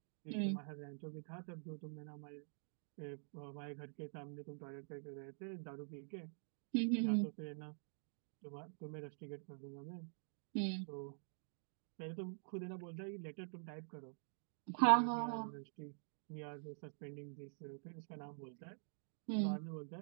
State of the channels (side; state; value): left; silent; digital silence